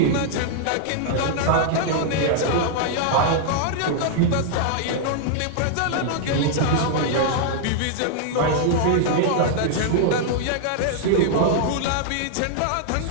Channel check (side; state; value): both; different; correlation -0.01